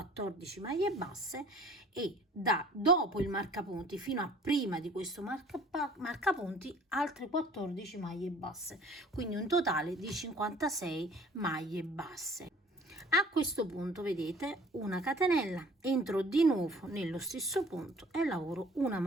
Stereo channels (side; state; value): both; normal; correlation 0.51